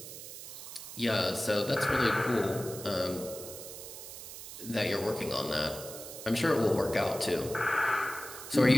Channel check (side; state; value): right; noise; hiss, 12 dB below the sound